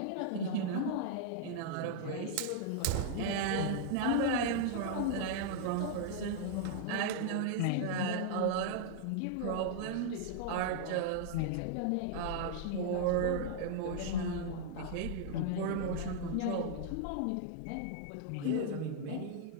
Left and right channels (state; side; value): different; both; correlation -0.01